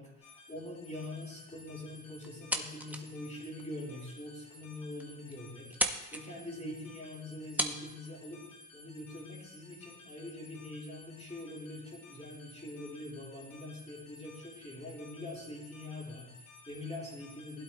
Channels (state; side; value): normal; both; correlation 0.23